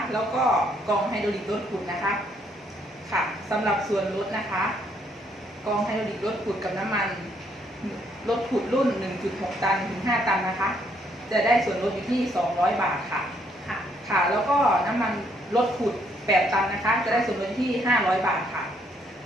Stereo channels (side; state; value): both; normal; correlation 0.70